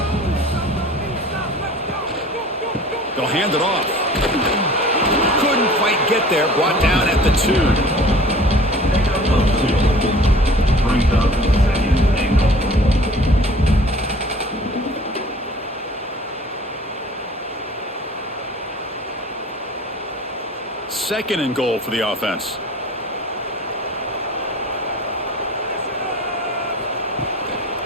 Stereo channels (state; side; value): normal; both; correlation 0.46